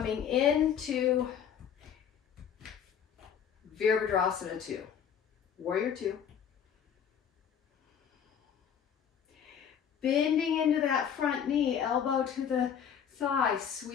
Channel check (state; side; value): quieter; right; 8.1 dB